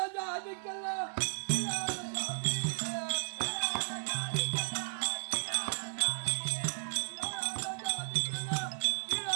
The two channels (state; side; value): silent; left; digital silence